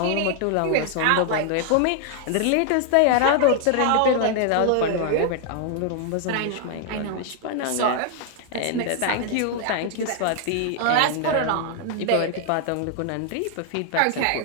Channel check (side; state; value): both; different; correlation 0.00